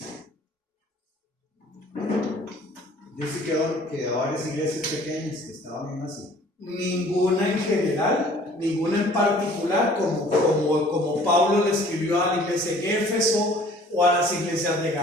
Dice que a varias iglesias pequeñas que estaban en Asia. Ninguna en general, ninguna en particular, como Pablo le escribió a la iglesia en Éfeso, o a las iglesias de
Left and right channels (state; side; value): normal; both; correlation 0.52